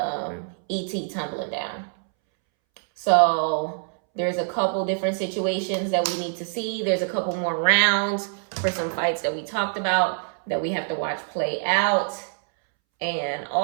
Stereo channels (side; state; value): left; silent; 62 dB below the other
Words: E.T. tumbling down. So there's a couple different situations that we need to see. There's a couple more rounds for some fights that we talked about that we have to watch play out. And